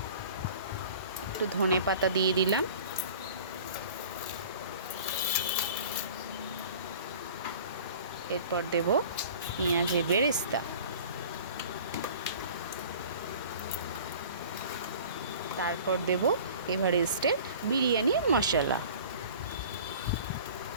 একটু ধনে পাতা দিয়ে দিলাম। এরপর দেব পেঁয়াজের বেরেস্তা। তারপর দেব এভারেস্টের বিরিয়ানি মশলা।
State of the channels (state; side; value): inverted; both; correlation -0.44